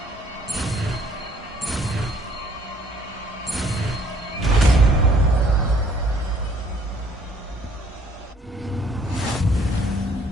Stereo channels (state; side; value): normal; both; correlation 0.61